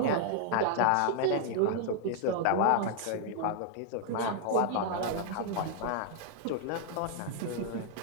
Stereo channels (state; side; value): different; both; correlation -0.01